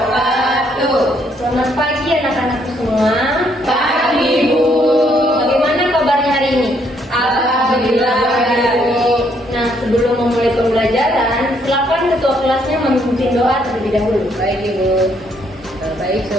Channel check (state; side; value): normal; both; correlation 0.70